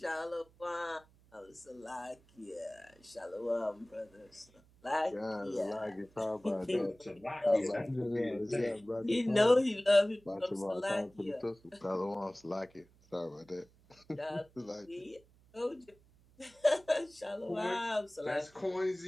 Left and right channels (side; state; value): right; noise; hum, 29 dB below the sound